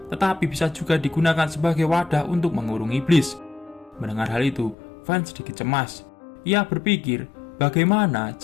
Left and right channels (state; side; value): drops out; right; at 4.8 s